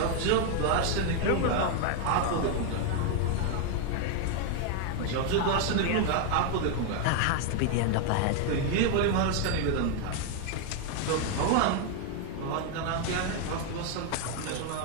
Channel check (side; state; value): both; different; correlation 0.01